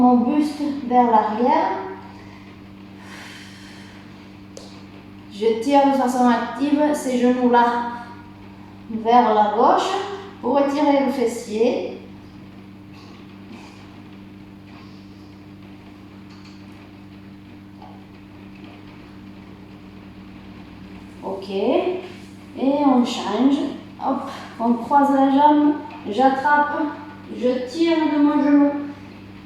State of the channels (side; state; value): both; identical; correlation 1.00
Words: buste vers l'arrière. Je tire de façon active ces genoux-là vers la gauche pour étirer le fessier. Ok. Et on change. Hop, on croise la jambe. J'attrape. Je tire de mon genou